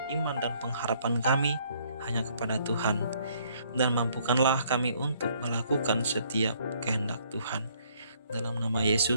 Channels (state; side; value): inverted; both; correlation -0.65